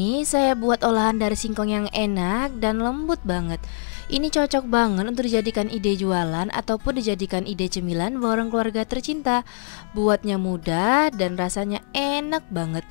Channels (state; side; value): silent; right; digital silence